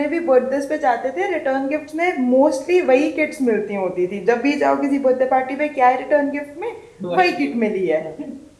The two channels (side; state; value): both; identical; correlation 1.00